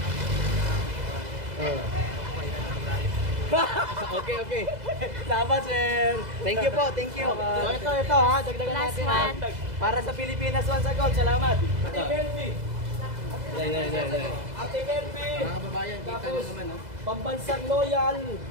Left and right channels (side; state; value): left; late; 2.0 ms